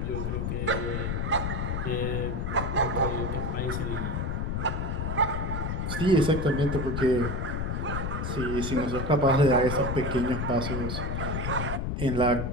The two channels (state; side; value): noise; left; rumble, 1 dB below the sound